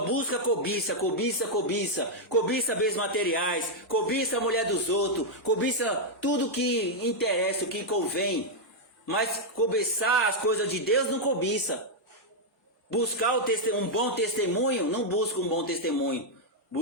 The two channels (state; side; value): normal; both; correlation -0.02